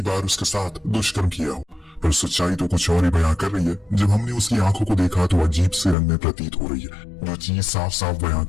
बार उसके साथ दुष्कर्म किया हो, पर सच्चाई तो कुछ और ही बयां कर रही है। जब हमने उसकी आंखों को देखा तो अजीब से रंग में प्रतीत हो रही है। जो चीज साफ साफ बयां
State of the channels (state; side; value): drops out; right; at 6.0 s